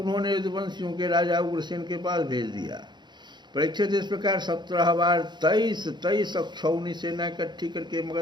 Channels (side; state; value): left; late; 0.21 ms